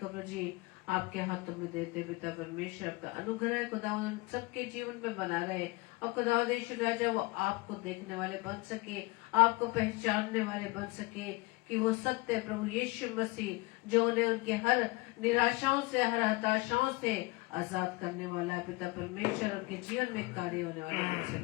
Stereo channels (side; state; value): right; quieter; 24.1 dB